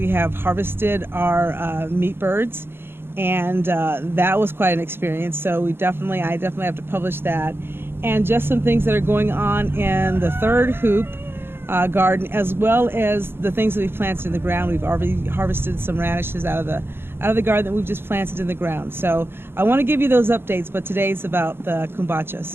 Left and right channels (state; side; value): late; left; 0.11 ms